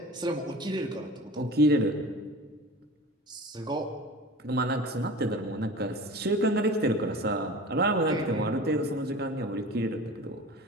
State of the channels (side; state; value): both; normal; correlation 0.37